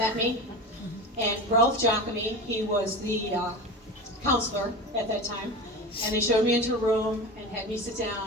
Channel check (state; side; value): normal; both; correlation 0.28